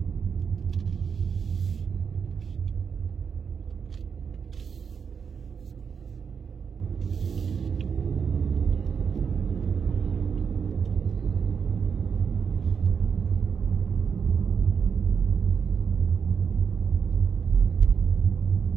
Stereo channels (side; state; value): left; quieter; 6.5 dB